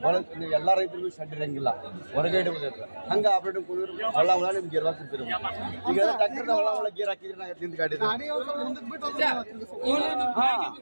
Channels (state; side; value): inverted; both; correlation -1.00